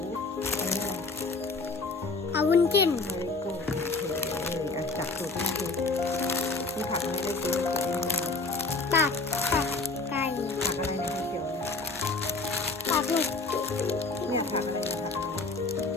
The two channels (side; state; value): right; quieter; 3.6 dB